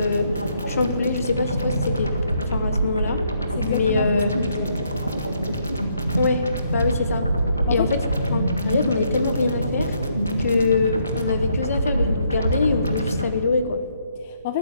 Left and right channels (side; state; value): both; inverted; correlation -0.72